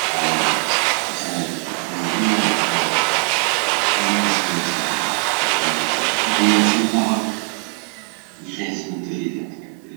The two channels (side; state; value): left; quieter; 34.4 dB